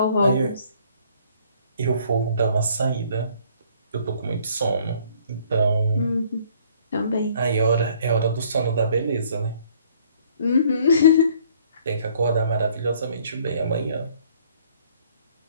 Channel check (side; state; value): both; inverted; correlation -0.61